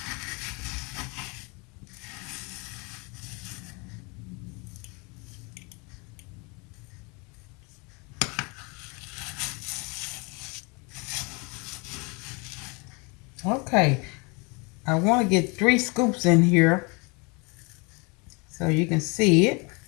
Okay. I want to get 3 scoops in here so you can see it.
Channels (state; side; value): quieter; right; 29.9 dB